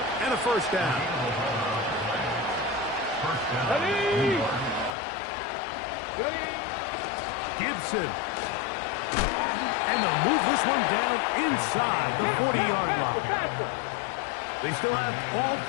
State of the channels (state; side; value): drops out; right; at 5.0 s